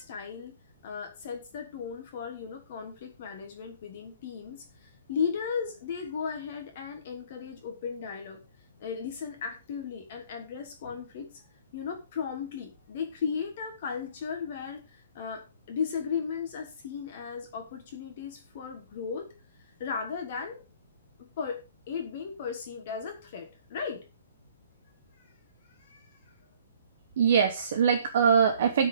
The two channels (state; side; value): inverted; both; correlation -0.57